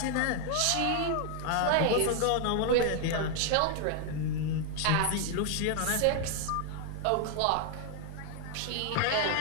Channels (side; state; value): both; different; correlation 0.00